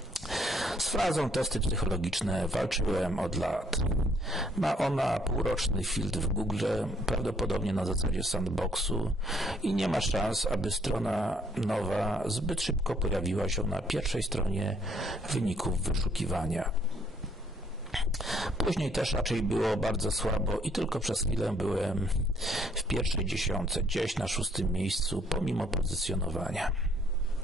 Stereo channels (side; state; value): both; normal; correlation 0.67